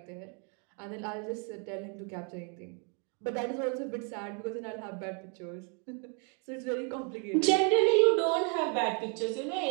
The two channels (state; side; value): quieter; left; 37.5 dB